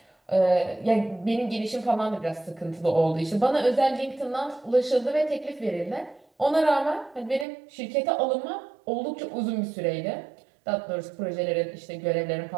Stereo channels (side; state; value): left; drops out; at 7.5 s